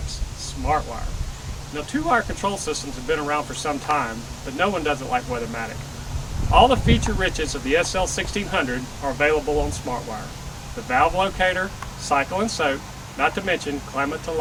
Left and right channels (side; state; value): both; identical; correlation 1.00